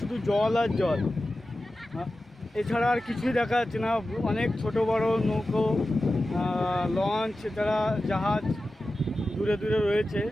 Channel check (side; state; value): both; normal; correlation 0.94